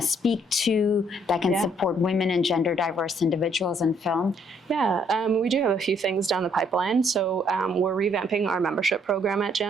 to that can support women and gender diverse individuals in film? Yeah, we do have a few things down the pipeline. So we're revamping our membership program at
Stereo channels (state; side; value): normal; both; correlation 0.67